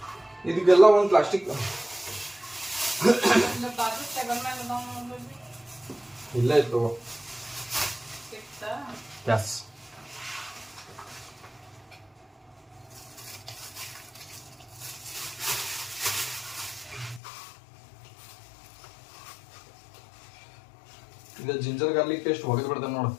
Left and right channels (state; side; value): drops out; right; at 17.2 s